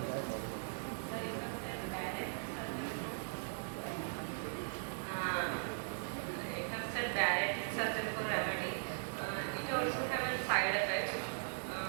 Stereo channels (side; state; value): left; silent; digital silence